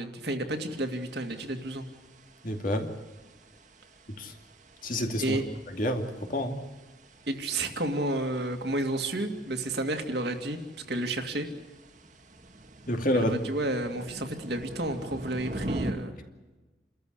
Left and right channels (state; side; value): normal; both; correlation 0.47